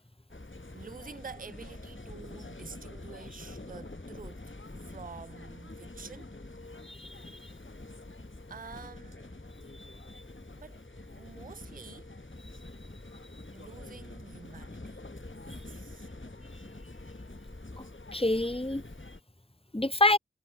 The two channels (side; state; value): both; normal; correlation 0.32